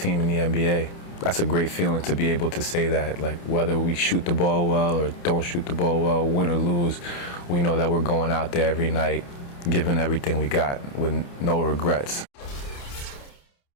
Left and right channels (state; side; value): late; right; 29 ms